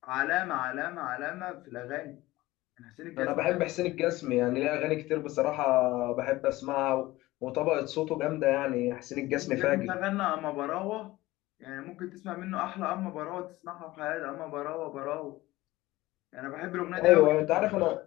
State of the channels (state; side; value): quieter; right; 18.4 dB